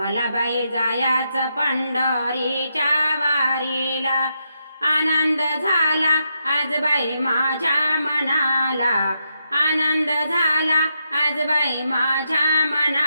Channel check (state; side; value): inverted; both; correlation -0.82